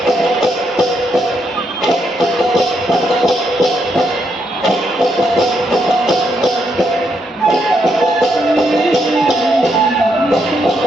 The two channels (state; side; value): normal; both; correlation 0.78